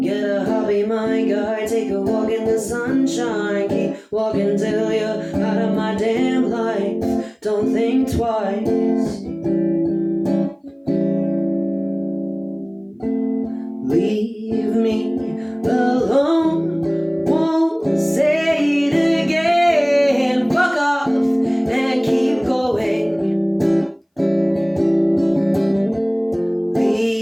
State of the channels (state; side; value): identical; both; correlation 1.00